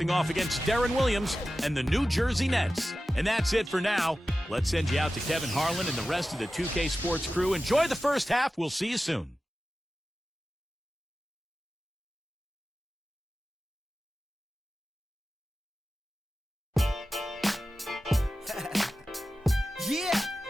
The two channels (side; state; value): both; normal; correlation 0.94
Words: off against Deron Williams and the New Jersey Nets. And that's it for now. Let's send you out to Kevin Harlan and the rest of the 2K Sports crew. Enjoy the first half. We'll see you soon. Yeah,